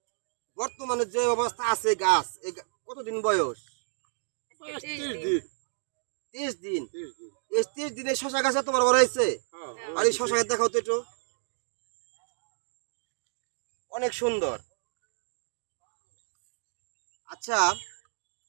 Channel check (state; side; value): silent; left; 58 dB below the other